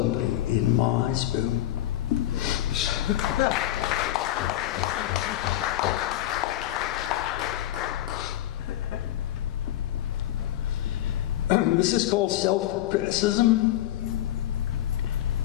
in my spoon. This is called self-criticism.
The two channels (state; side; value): quieter; right; 13.3 dB